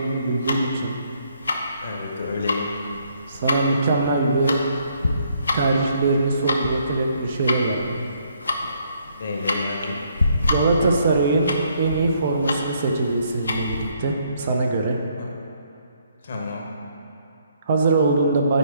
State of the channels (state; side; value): inverted; both; correlation -0.70